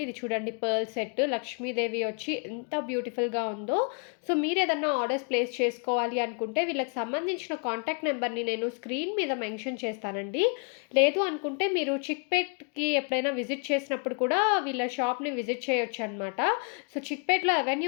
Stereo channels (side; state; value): right; quieter; 39.3 dB